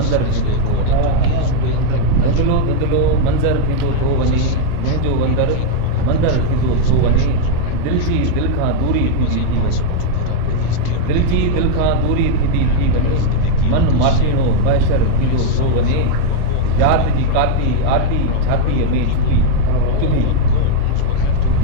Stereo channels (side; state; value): both; different; correlation 0.00